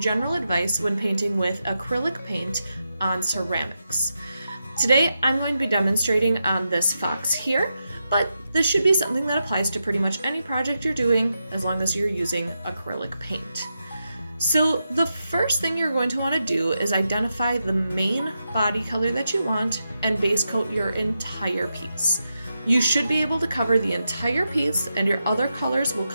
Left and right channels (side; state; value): both; inverted; correlation -0.87